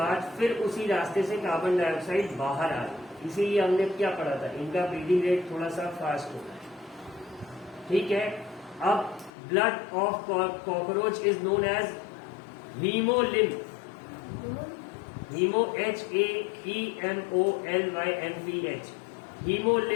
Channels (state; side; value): drops out; right; at 9.3 s